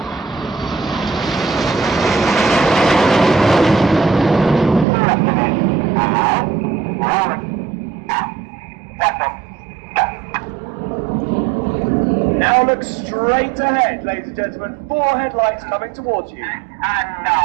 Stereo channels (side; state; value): left; drops out; at 4.9 s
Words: Now look straight ahead, ladies and gentlemen. 4 headlights coming towards you. And